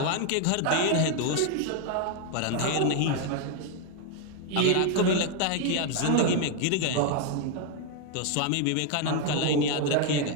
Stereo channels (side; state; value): both; different; correlation 0.01